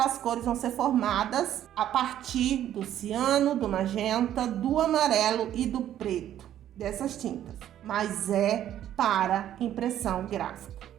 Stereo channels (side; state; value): left; quieter; 11.4 dB